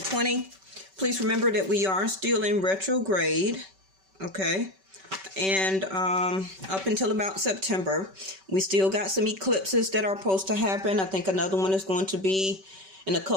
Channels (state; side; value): late; left; 5.2 ms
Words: Please remember that we are still in retrograde, okay? And up until about September, we still got some eclipses that are supposed to happen. I think another one is going to be in a